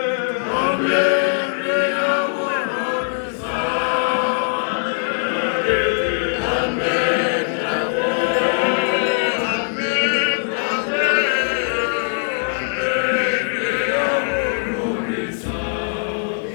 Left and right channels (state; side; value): silent; right; 56 dB below the other